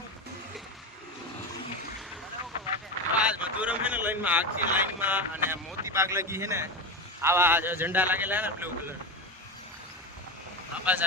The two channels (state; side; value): normal; both; correlation 0.19